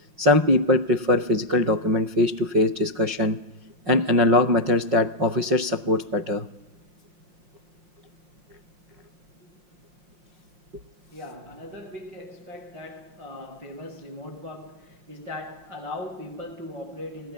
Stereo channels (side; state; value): left; late; 5.6 ms